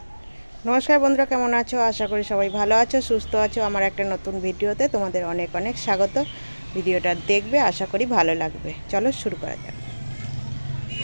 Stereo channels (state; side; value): inverted; both; correlation -1.00